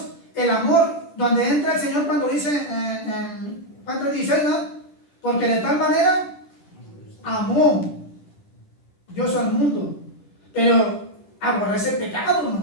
el amor donde entra el Señor cuando dice en Juan 3:16, ¿no? Porque de tal manera amó Dios al mundo, pero aborrece el pecado,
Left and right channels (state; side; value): late; right; 10 ms